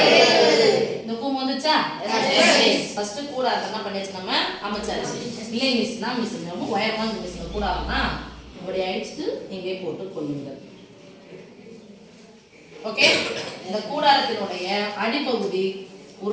இந்த கூம்பு வந்துச்சா? ஃபர்ஸ்ட் கூடாரம் என்ன பண்ணியாச்சு நம்ம அமைச்சாச்சு. இல்லை மிஸ்னா மிஸ் நம்ம உயரமா மிஸ் கூடாரம்னா இப்படி அடிச்சுட்டு இங்கே போட்டு கொள்ளுங்கள். ஓகே? இந்த கூடாரத்தினுடைய அடிப்பகுதி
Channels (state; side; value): identical; both; correlation 1.00